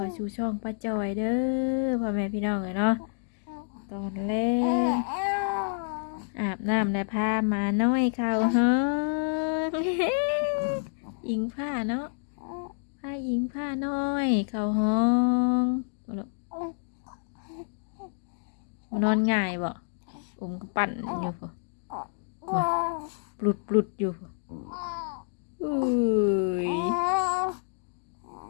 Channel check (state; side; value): silent; right; digital silence